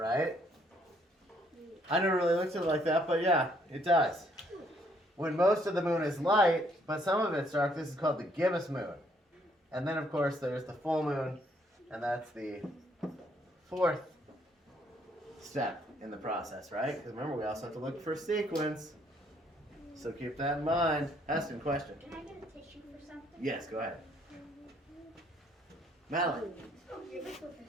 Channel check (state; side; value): normal; both; correlation 0.67